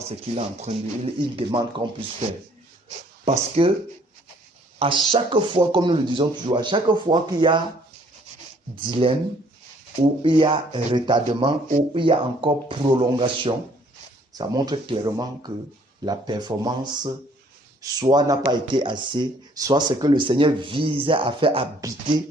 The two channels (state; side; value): normal; both; correlation 0.61